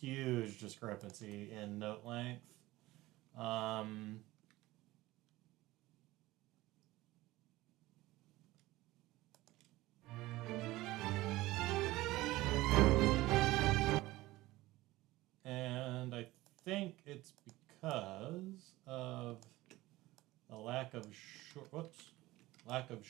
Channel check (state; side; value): quieter; left; 18.2 dB